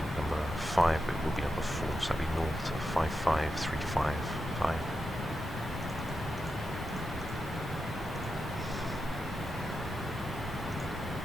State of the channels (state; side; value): normal; both; correlation 0.89